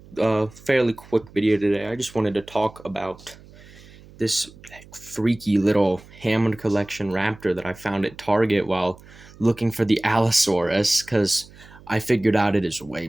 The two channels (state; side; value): noise; right; hum, 22 dB below the sound